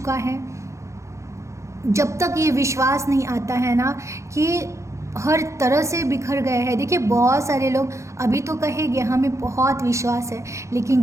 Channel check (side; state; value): left; late; 0.14 ms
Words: है? जब तक ये विश्वास नहीं आता है ना कि हर तरह से बिखर गए हैं। देखिए, बहुत सारे लोग अभी तो कहेंगे हमें बहुत विश्वास है,